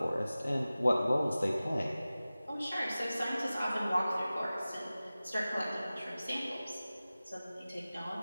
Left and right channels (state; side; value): inverted; both; correlation -0.97